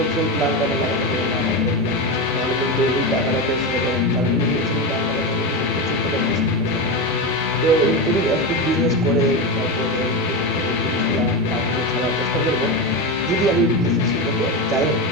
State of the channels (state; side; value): normal; both; correlation 0.16